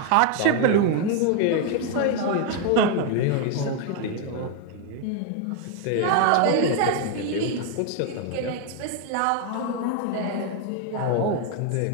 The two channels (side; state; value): both; different; correlation 0.01